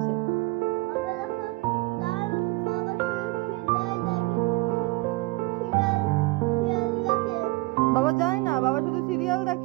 বাবা যায় না, বাবা শুধু সিরিয়াল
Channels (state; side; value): quieter; left; 22.9 dB